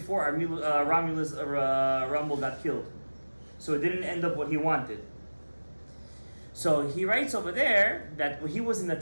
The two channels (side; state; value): both; inverted; correlation -1.00